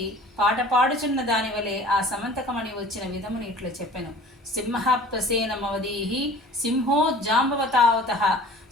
పాట పాడుచున్న దాని వలె ఆ సమంతకమణి వచ్చిన విధముని ఇట్లా చెప్పెను. సింహ ప్రసేనమవదీహి సింహో జాంబవతావతః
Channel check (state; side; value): normal; both; correlation 0.45